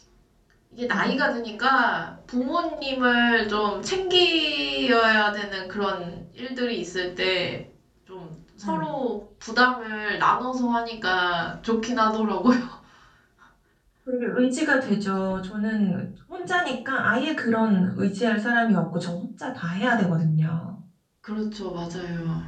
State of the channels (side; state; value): both; identical; correlation 1.00